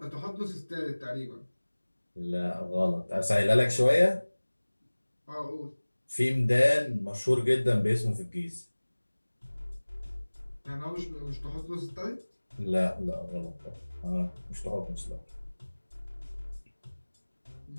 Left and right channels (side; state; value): both; inverted; correlation -1.00